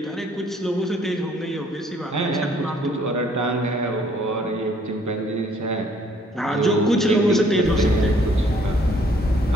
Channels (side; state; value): both; normal; correlation 0.63